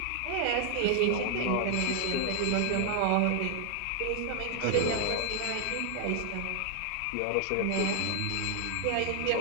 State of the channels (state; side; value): different; both; correlation 0.00